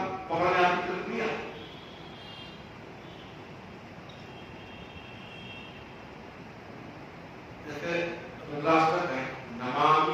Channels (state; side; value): identical; both; correlation 1.00